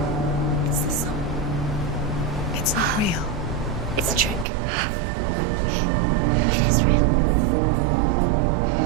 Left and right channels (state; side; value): drops out; left; at 4.5 s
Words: It's not real. It's a trick. It's not real. It is real. Listen to